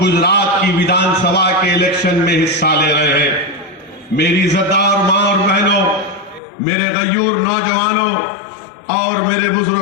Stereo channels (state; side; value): drops out; right; at 6.4 s